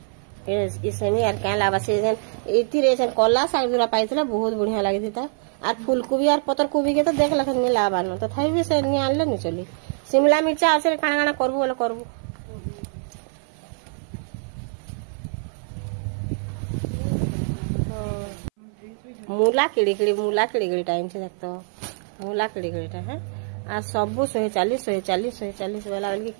ए सेमी आर का लाबा से जन एती रे जन कला साग दुरा पाइतला बहुत बढ़िया लागि था आर फूलकोबी आर पतर कोबी के तो देख लखन नहीं लाबा न तो थाई भी से नहीं आनले नहीं चली शिमला मिर्चा आसे काना काना करबो बोले करबो मूला किड़ी टाइम से देखतो मूला किड़ी है आ सब 140 वाला के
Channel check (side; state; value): left; silent; 57 dB below the other